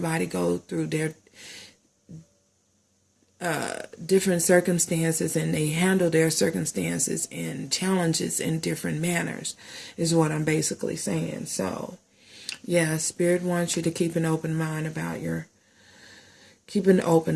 go through their different circumstances, and they handle their circumstances and challenges in different manners, is what I'm basically saying. So yeah, Spirit wants you to keep an open mind about keep an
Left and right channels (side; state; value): both; identical; correlation 1.00